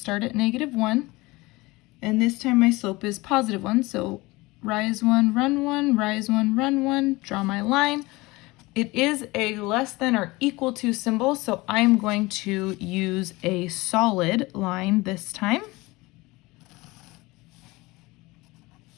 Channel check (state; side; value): quieter; right; 22.0 dB